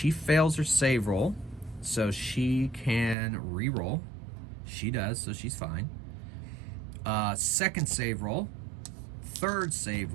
fails her save roll, so she can re-roll. She does, so she's fine. 2nd save roll, 3rd save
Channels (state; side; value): drops out; left; at 3.2 s